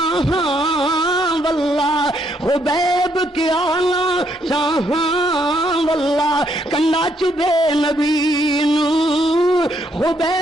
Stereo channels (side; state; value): both; normal; correlation 0.73